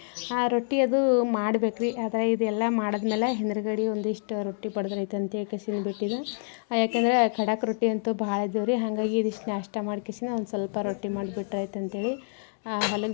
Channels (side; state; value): right; silent; digital silence